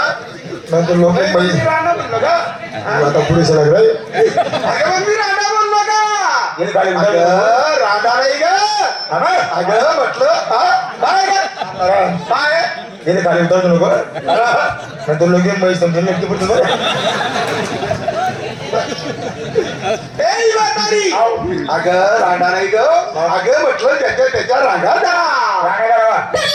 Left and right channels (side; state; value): both; identical; correlation 1.00